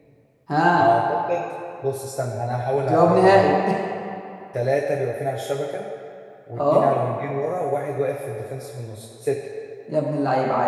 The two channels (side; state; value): both; identical; correlation 1.00